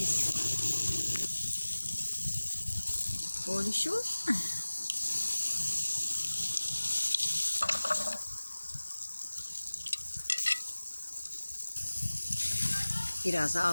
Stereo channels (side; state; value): both; inverted; correlation -1.00